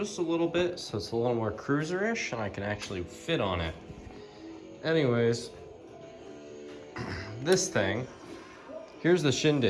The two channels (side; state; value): both; identical; correlation 1.00